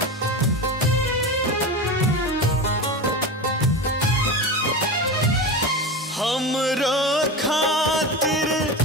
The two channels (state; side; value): normal; both; correlation 0.24